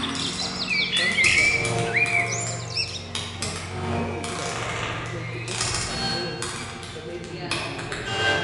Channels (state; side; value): identical; both; correlation 1.00